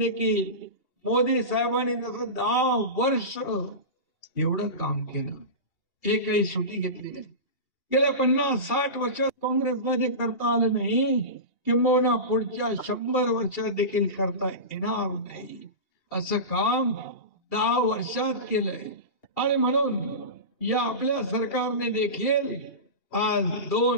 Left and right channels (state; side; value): late; right; 2.8 ms